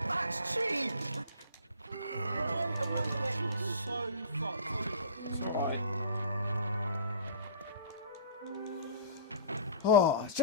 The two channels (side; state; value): both; inverted; correlation -0.42